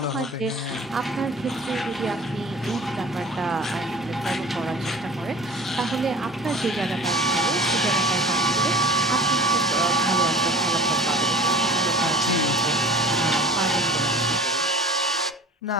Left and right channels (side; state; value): both; normal; correlation 0.41